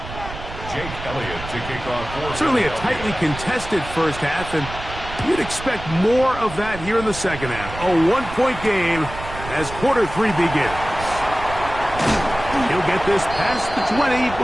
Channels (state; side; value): noise; right; rumble, 11 dB below the sound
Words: Jake Elliott to kick off. Certainly a tightly contested first half, and you'd expect more of that here in the second half. A one-point game as quarter 3 begins. He'll get this past the 20